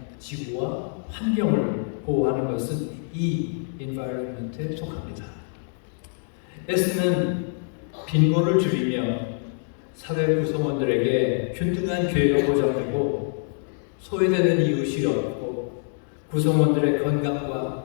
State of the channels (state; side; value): silent; right; digital silence